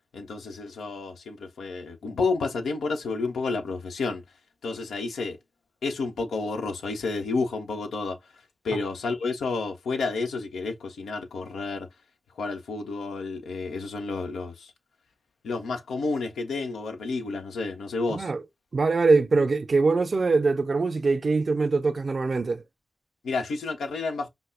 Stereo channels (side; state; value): both; normal; correlation 0.87